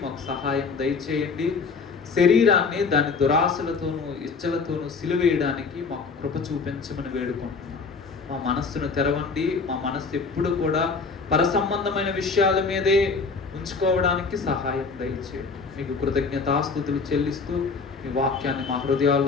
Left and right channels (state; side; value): quieter; right; 4.7 dB